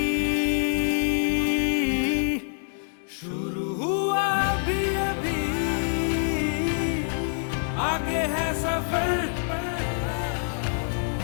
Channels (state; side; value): silent; right; digital silence